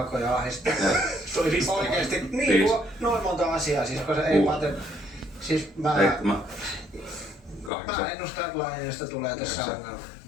ahdistaa. Oikeesti, niin noin monta asiaa, siis koska ei Pate... Siis mä ennustan, että Laineesta tulee tässä ongelma.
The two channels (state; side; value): drops out; right; at 7.7 s